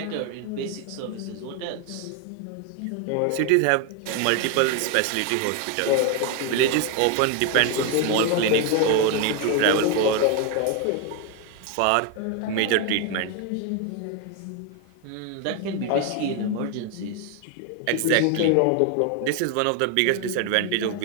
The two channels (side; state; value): both; different; correlation 0.01